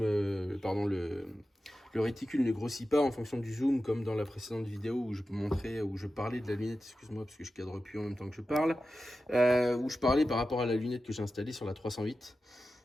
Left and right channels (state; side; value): normal; both; correlation 0.93